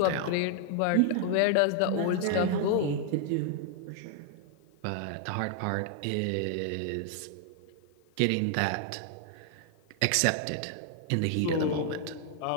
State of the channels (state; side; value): different; both; correlation 0.00